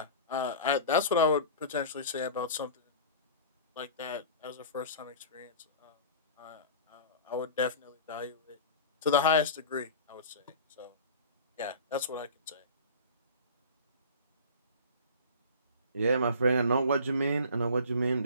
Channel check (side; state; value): both; inverted; correlation -0.38